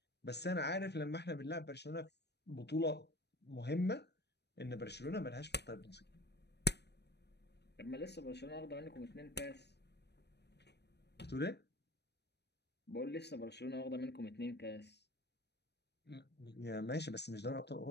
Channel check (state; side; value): late; right; 0.49 ms